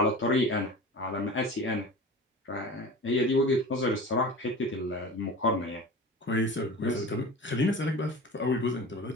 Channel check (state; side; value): normal; both; correlation 0.35